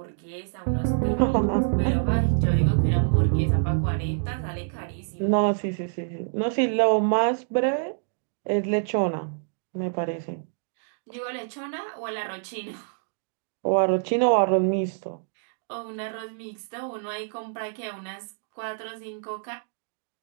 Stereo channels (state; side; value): silent; left; digital silence